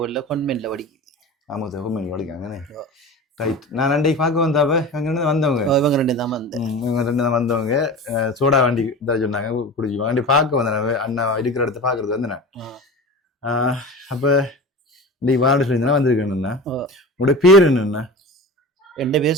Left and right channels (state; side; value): normal; both; correlation 0.32